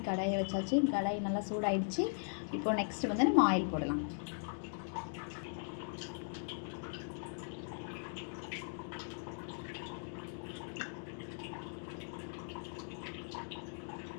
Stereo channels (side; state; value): right; silent; digital silence